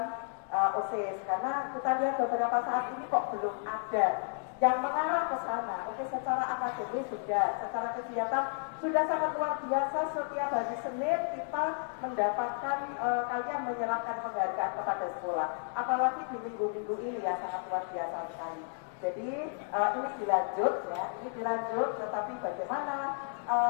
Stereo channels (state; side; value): silent; right; 56 dB below the other